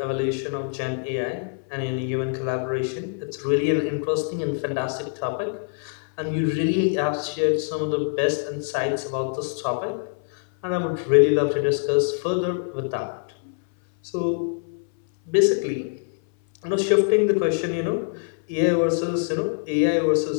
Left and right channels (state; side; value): silent; right; 62 dB below the other